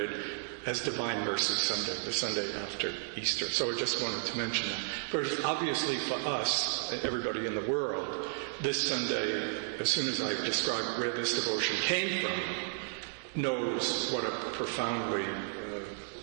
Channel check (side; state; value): left; silent; digital silence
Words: as Divine Mercy Sunday, the Sunday after Easter. So I just wanted to mention that. But obviously for us, everybody in the world, this Sunday, as soon as I described where this devotion came from, knows what a profoundly